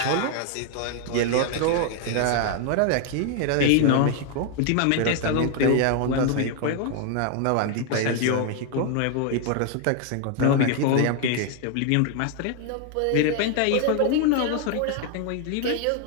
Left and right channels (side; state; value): both; different; correlation 0.00